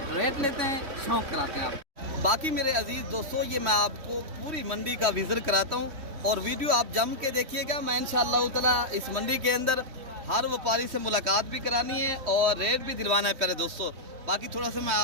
रेट लेते हैं, शौक़ कराते हैं आप। बाकी मेरे अजीज़ दोस्तों, ये मैं आपको पूरी मंडी का विजिट कराता हूँ और वीडियो आप जम के देखिएगा। मैं इंशाअल्लाह ताला इस मंडी के अंदर हर व्यापारी से मुलाकात भी करानी है और रेट भी दिलवाना है प्यारे दोस्तों। बाकी थोड़ा सा मैं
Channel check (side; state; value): left; late; 3.1 ms